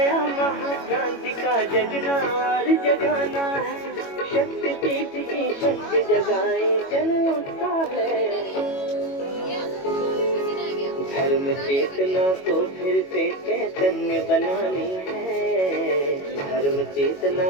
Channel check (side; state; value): right; late; 21 ms